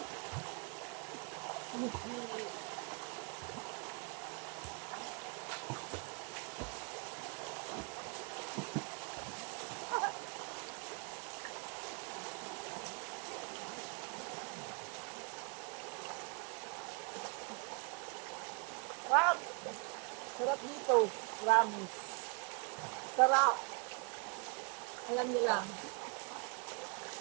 Wow! Sarap dito. Promise. Sarap. Alam niyo lang.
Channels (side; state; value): left; quieter; 34.2 dB